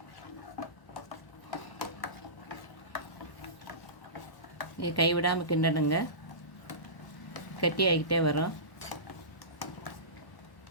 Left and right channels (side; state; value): right; late; 1.0 ms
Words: இது கைவிடாமல் கிண்டணுங்க, கட்டி ஆகிக்கிட்டே வரும்.